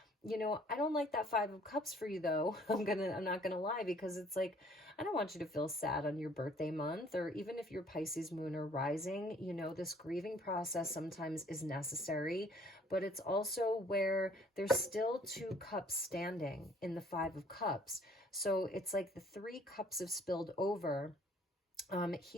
You know, I don't like that Five of Cups for you, though. I'm not gonna lie, because it's like, I don't want you to feel sad on your birthday month, or even if you're Pisces moon or rising. You know, this grieving process sometimes is necessary, but it's also where there's still two cups standing in the Five of Cups. So it's like the three cups have spilled over.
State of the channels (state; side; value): normal; both; correlation 0.58